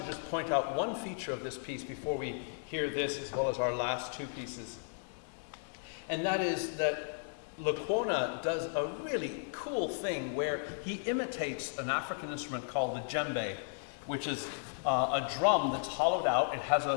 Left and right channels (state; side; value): silent; right; digital silence